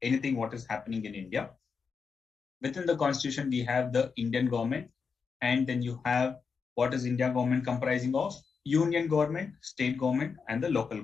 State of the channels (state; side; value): quieter; right; 5.5 dB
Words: anything what is happening in India. Within the constitution, we have the Indian government, and then you have what is India government comprising of? Union government, state government, and the local